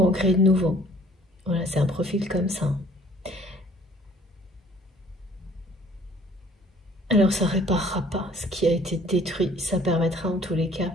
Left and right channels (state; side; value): normal; both; correlation 0.56